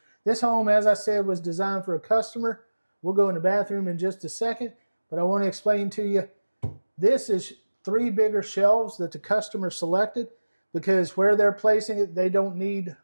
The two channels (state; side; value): inverted; both; correlation -1.00